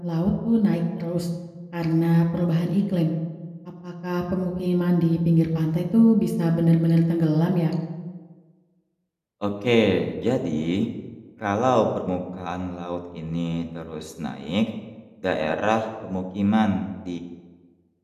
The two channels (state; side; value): identical; both; correlation 1.00